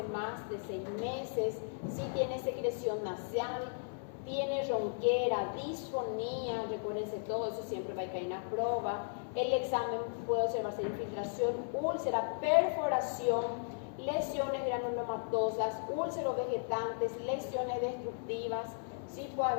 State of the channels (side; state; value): right; silent; 54 dB below the other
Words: más de 6 meses, si tiene secreción nasal, tiene ronquera, disfonía, recuérdense todo eso siempre va a caer en la prueba. El examen puede observarse infiltración, úlcera, perforación, lesiones granulomatosas, úlceros vegetantes, lesiones destructivas. Sí puede